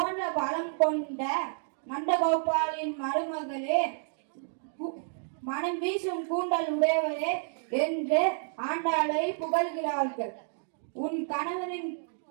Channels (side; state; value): left; silent; digital silence